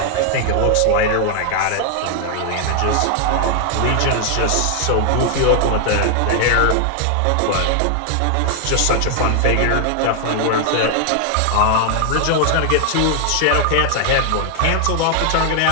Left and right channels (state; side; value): different; both; correlation 0.00